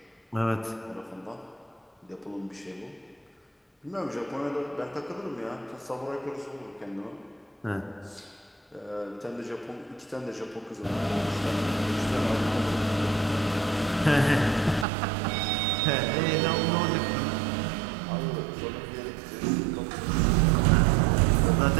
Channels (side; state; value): left; drops out; at 14.9 s